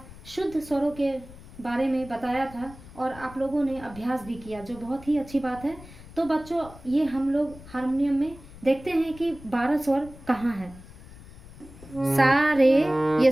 शुद्ध स्वरों के बारे में बताया था और आप लोगों ने अभ्यास भी किया, जो बहुत ही अच्छी बात है। तो बच्चों, ये हम लोग हारमोनियम में देखते हैं कि 12 स्वर कहाँ है। सा रे ये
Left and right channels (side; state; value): left; noise; rumble, 19 dB below the sound